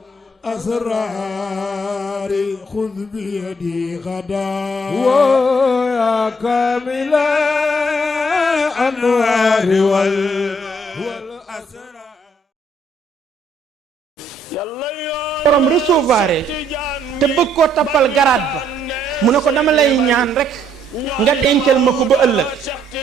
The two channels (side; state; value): both; normal; correlation 0.68